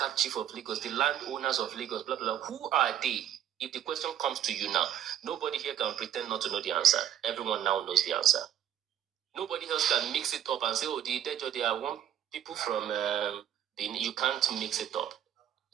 chief of Lagos, the landowners of Lagos, blah, blah, blah, who are they? If the question comes to you now, nobody here can pretend not to know the answer. Everyone now knows the answer. Nobody else can mix it up and say, oh, the Idejo, they are one people from, you can't mix it up.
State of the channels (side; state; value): left; quieter; 10.4 dB